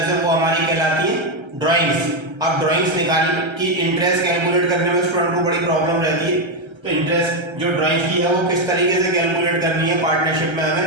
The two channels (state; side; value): late; left; 1.3 ms